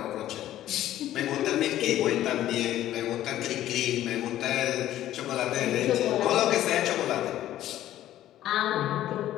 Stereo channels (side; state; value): right; quieter; 13.1 dB